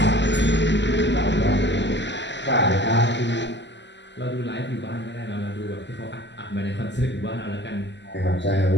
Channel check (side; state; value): right; late; 0.52 ms